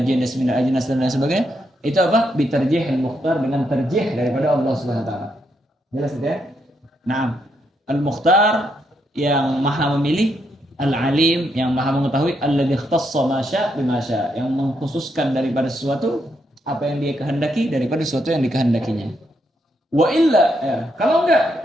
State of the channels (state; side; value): normal; both; correlation 0.78